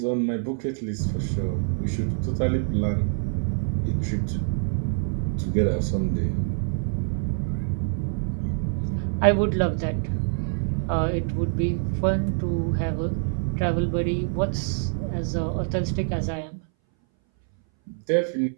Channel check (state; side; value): silent; left; 60 dB below the other